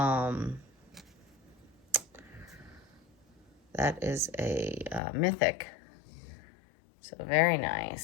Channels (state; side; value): drops out; right; at 5.0 s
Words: that is a mythic. So very